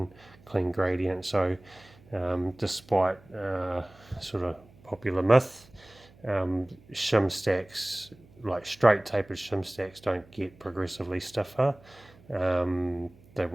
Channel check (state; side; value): noise; right; hum, 26 dB below the sound